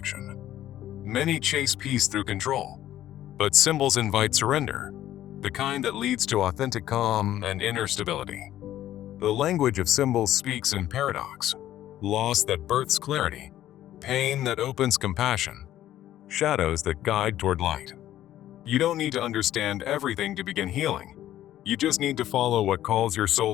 Many chase peace through control, but symbols invite surrender, the kind that leads to authentic calm and inner stability. The language of symbols speaks in paradox, loss that births clarity, pain that opens compassion, shadows that guide toward light. You don't need to understand everything to begin healing. You just need to follow what calls your soul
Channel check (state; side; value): quieter; right; 12.8 dB